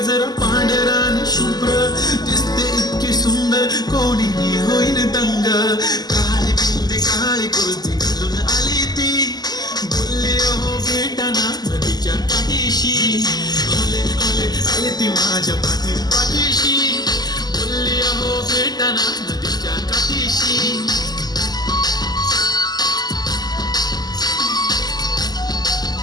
पांढरान शुभ्र दिसते इतकी सुंदर कोणीही होईन दंग काळी बिंदी काळी कुर्ती घालून आली ती बोलले हो भेटाना नदीच्या काठीशी आले आले आले ती माझ्या पाठीशी बोलले हो भेटाना नदीच्या काठीशी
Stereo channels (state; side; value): late; right; 0.20 ms